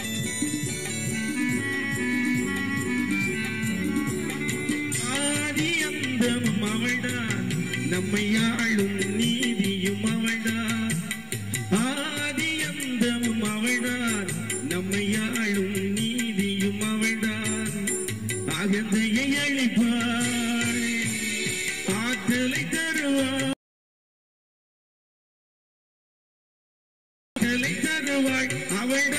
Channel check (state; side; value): identical; both; correlation 1.00